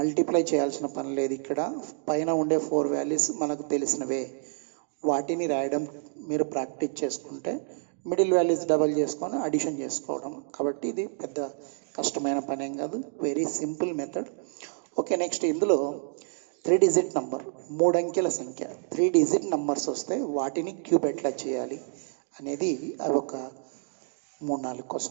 చేయాల్సిన పని లేదు. ఇక్కడ పైన ఉండే 4 వాల్యూస్ మనకు తెలిసినవే, వాటిని రాయడం మీరు ప్రాక్టీస్ చేసుకుంటే మిడిల్ వాల్యూస్ డబల్ చేసుకొని అడిషన్ చేసుకోవడం. కాబట్టి ఇది పెద్ద కష్టమైన పని ఏం కాదు, very simple method. Okay, next ఇందులో 3 డిజిట్ నంబర్, 3 అంకెల సంఖ్య 3 డిజిట్ నంబర్స్ వస్తే వాటిని క్యూబ్ ఎట్లా చేయాలి అనేది అవి ఒక 3-4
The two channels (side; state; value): left; silent; digital silence